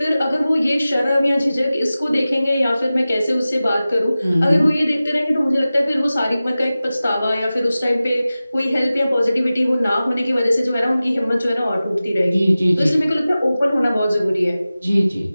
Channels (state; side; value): inverted; both; correlation -0.96